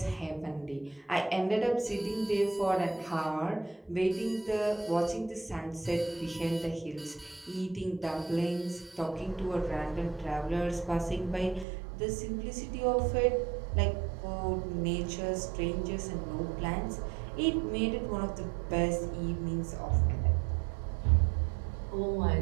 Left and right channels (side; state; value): left; drops out; at 11.7 s